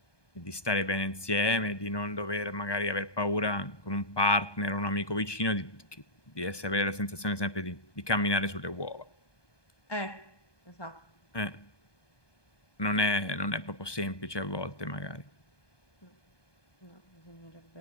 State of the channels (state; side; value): late; right; 1.2 ms